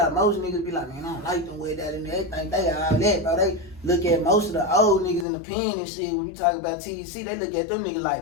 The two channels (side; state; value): right; drops out; at 5.2 s